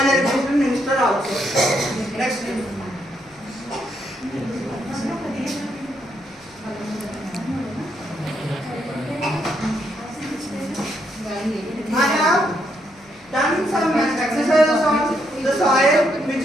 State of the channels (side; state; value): left; noise; hum, 29 dB below the sound